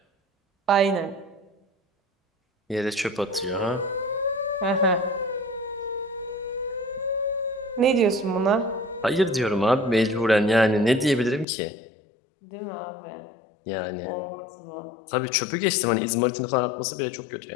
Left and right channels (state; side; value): drops out; right; at 11.5 s